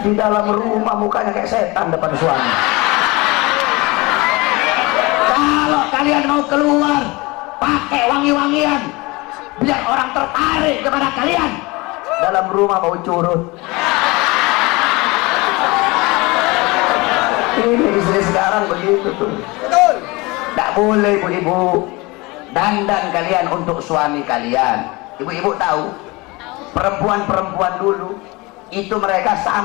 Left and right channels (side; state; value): right; quieter; 23.9 dB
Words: Di dalam rumah mukanya kayak setan depan suami. Kalau kalian mau keluar, pakai wangi-wangian, biar orang tertarik kepada kalian. Dalam rumah mau curut. Ini istri sekarang begitu tuh. Tidak boleh ibu-ibu. Dandan kalian untuk suami kalian. Ibu-ibu tahu, perempuan-perempuan dulu itu mereka